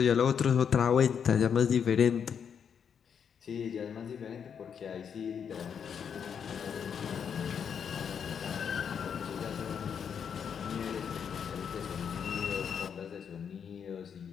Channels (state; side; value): quieter; right; 7.4 dB